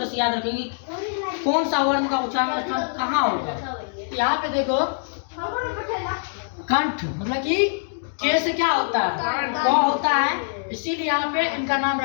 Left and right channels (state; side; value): silent; right; digital silence